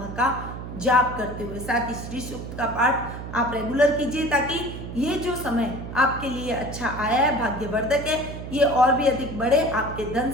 का जाप करते हुए। साथ ही श्री सूक्त का पाठ आप रेगुलर कीजिए, ताकि ये जो समय आपके लिए अच्छा आया है, भाग्यवर्धक है, ये और भी अधिक बढ़े। आपके धन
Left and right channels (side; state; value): right; noise; hum, 9 dB below the sound